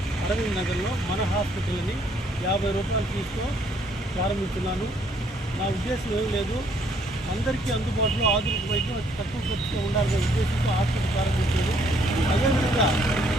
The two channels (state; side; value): normal; both; correlation 0.66